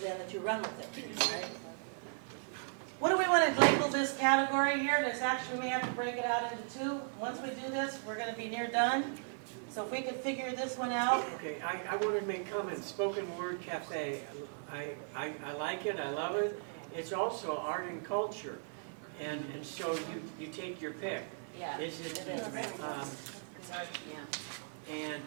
that you run with it, right? What do we want to label this category here? This actually, we may have to break it out into two. Once we do this, we're gonna be near done. So if we could figure this one out. Okay, I wanted to make comments. Spoken Word Cafe, I like it, I love it. It's also art and culture, and so you take your pick. Yeah, Is it? it is. It's art, yeah.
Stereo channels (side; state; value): left; silent; digital silence